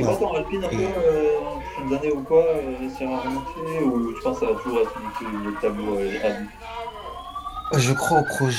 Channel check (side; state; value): both; identical; correlation 1.00